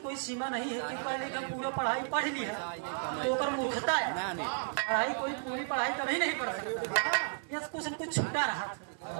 कोई सीमा नहीं है कि पहले हम पूरा पढ़ाई पढ़ ली है तो कर मूर्खता है। पढ़ाई कोई पूरी पढ़ाई कभी नहीं पढ़ सकता, यह कुछ न कुछ छूटा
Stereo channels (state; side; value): silent; left; digital silence